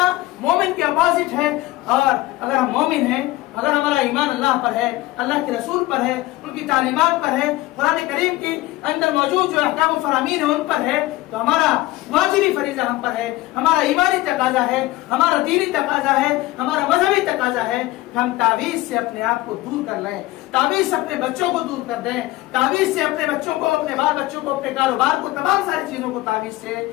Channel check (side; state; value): right; quieter; 18.2 dB